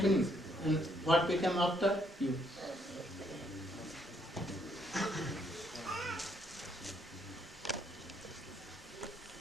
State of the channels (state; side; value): normal; both; correlation 0.71